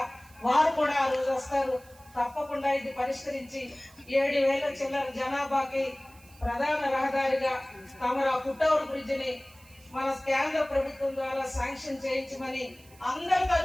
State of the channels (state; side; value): noise; right; hiss, 25 dB below the sound